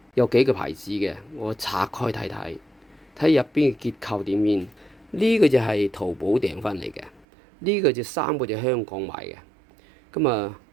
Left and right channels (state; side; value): drops out; left; at 7.2 s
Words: 有幾個牌子嘅，我拆開睇睇，睇入邊嘅結構點樣。呢個就係淘寶訂翻嚟嘅，呢個就3個就香港買嘅。咁啊，